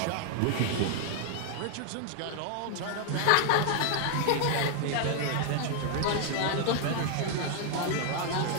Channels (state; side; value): different; both; correlation 0.00